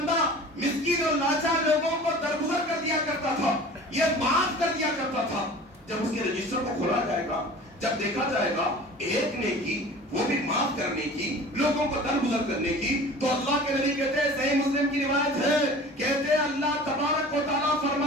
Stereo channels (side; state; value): both; normal; correlation 0.42